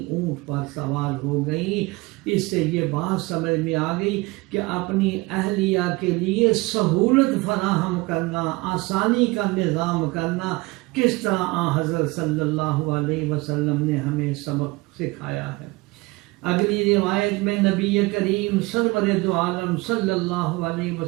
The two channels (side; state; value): left; quieter; 23.2 dB